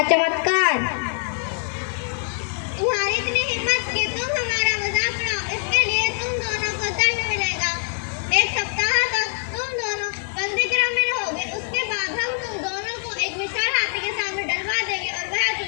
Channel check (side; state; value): right; silent; 61 dB below the other